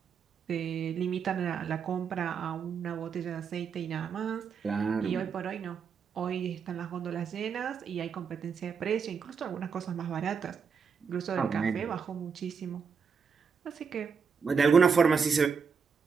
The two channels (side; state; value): left; quieter; 6.0 dB